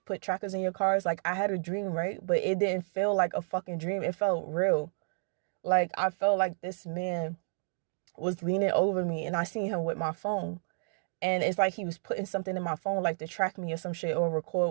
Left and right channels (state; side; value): silent; left; digital silence